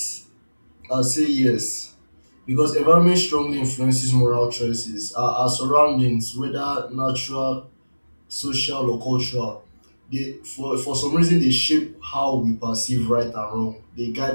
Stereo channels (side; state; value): both; inverted; correlation -1.00